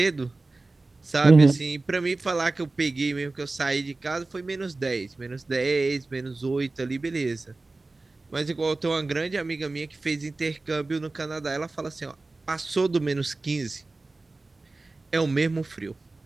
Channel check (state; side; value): quieter; left; 3.3 dB